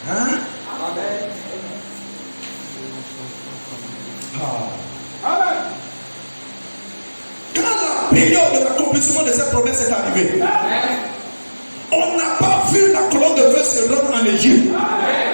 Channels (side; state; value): both; inverted; correlation -1.00